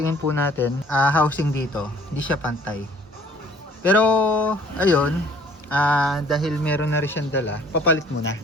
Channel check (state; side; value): normal; both; correlation 0.55